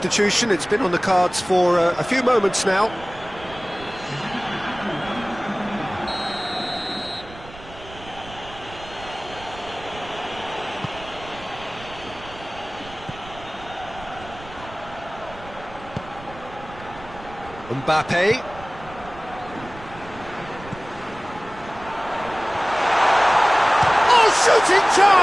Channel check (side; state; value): right; noise; rumble, 18 dB below the sound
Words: It's been on the cards for a few moments now. Mbappe. Shooting